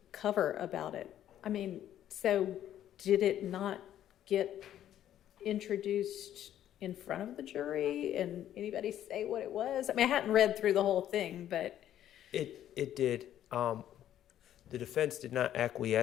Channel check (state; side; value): quieter; right; 11.4 dB